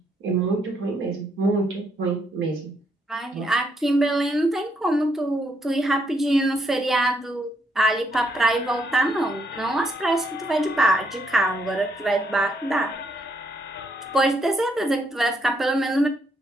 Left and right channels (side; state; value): both; normal; correlation 0.74